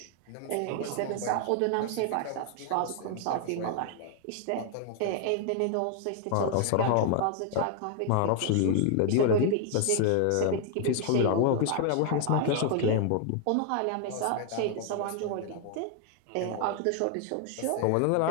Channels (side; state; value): both; different; correlation 0.00